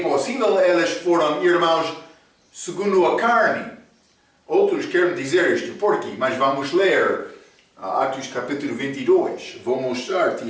possível eles foram irmãos segundo a carne. Outros querem dizer isto. Por quê? Mas vamos ler Atos capítulo 22. Vou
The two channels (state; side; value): identical; both; correlation 1.00